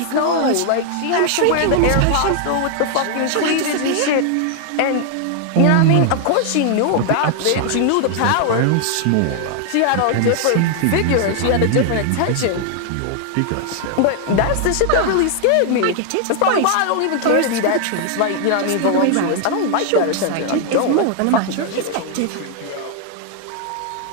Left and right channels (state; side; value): different; both; correlation 0.00